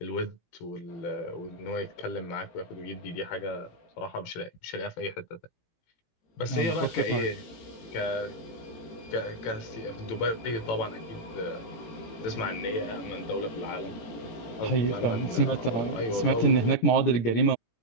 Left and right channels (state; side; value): late; right; 18 ms